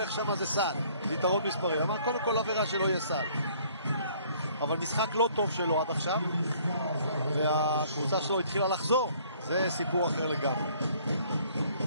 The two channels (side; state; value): both; inverted; correlation -0.59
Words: שם זה סל. זה יתרון מספרי. אמר קודם כל עבירה שלא יהיה סל. אבל משחק לא טוב שלו עד עכשיו. והקבוצה שלו התחילה לחזור. זה סיפור אחר לגמרי.